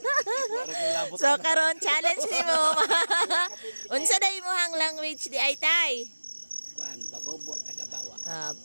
Para kay labot So karon challenge nimo. Unsa day mo hang language di ay tay? Kuan, Bagobo, Tagabawa.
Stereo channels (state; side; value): inverted; both; correlation -1.00